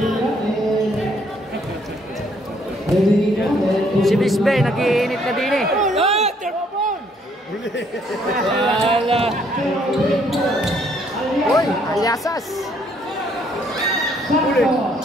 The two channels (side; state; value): both; normal; correlation 0.67